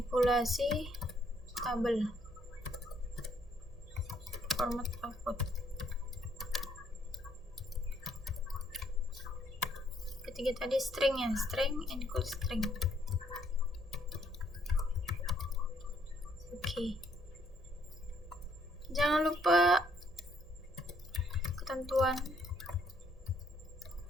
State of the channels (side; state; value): both; normal; correlation 0.69